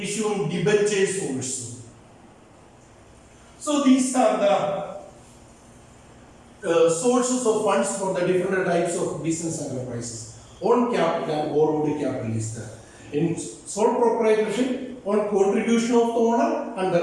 debentures also. So these are the sources of funds for the different types of business enterprises. Own capital and borrowed capital is there. In sole proprietorship, on contribution of the owner and the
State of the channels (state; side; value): identical; both; correlation 1.00